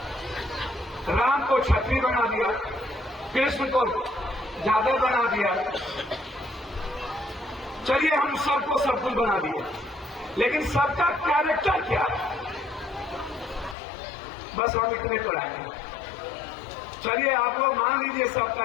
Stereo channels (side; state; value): right; drops out; at 13.8 s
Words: राम को क्षत्रिय बना दिया, कृष्ण को जादव बना दिया। चलिए हम सबको सब कुछ बना दिया, लेकिन सबका कैरेक्टर क्या है? बस हम इतने तो लाए। चलिए आप लोग मान लीजिए सबका